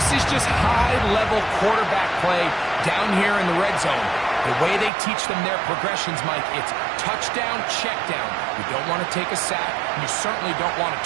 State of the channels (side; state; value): left; drops out; at 4.9 s